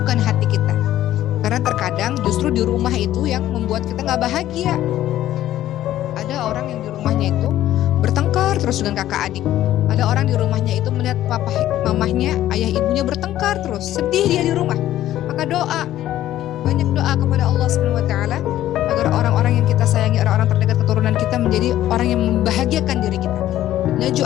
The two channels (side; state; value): right; quieter; 13.2 dB